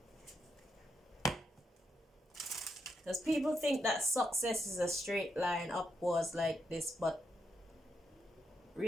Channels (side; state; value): both; normal; correlation 0.81